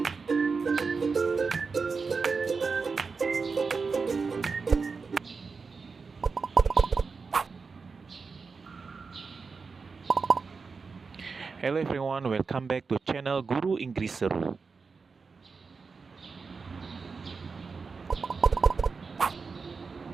everyone, welcome back to channel Guru Inggris Seru.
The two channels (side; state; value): left; quieter; 4.8 dB